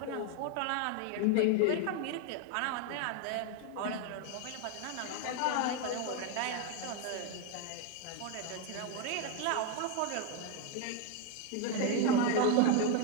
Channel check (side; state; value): both; different; correlation 0.01